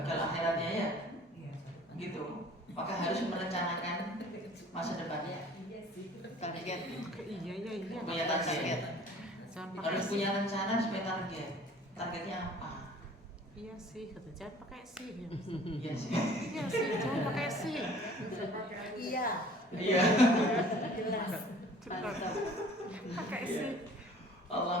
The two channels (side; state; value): both; normal; correlation 0.50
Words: akhiratnya ya, gitu. Maka harus merencanakan masa depannya. Target. Iya. Punya target. Harus punya rencana supaya target. Targetnya apa? Iya sih, kata jangan pakai sih. Iya sih. Iya sih, jangan pakai sih. Iya. Iya. Jelas. Pakai sih.